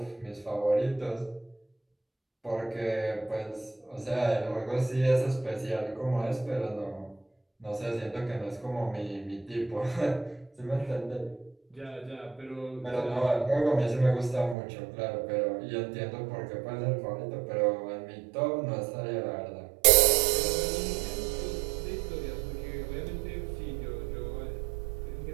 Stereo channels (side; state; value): left; drops out; at 14.6 s